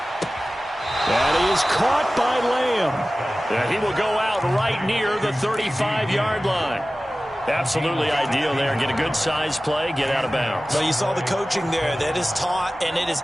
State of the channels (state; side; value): normal; both; correlation 0.96